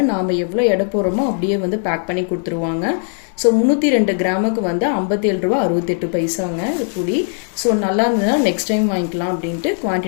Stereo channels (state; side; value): silent; right; 58 dB below the other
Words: நாம் எவ்வளோ எடை போடுறோமோ அப்படியே பேக் பண்ணி கொடுத்துருவாங்க. ஸோ 302 கிராமுக்கு 57 ரூபா 68 பைசாங்க புளி. ஸோ நல்லா இருந்ததுன்னா நெக்ஸ்ட் டைம் வாங்கிக்கலாம் அப்படின்ட்டு